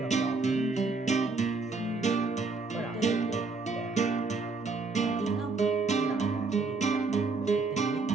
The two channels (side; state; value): left; quieter; 4.0 dB